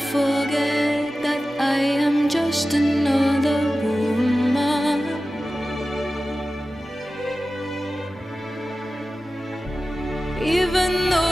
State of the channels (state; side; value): normal; both; correlation 0.95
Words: that I am just another woman. Even